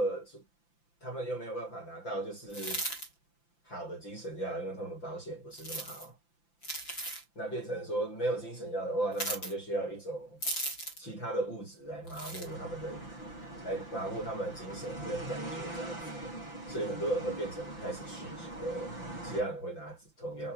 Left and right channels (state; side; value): late; right; 5.9 ms